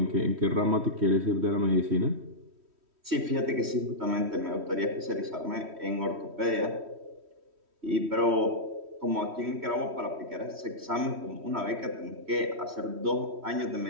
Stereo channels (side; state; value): left; late; 3.1 ms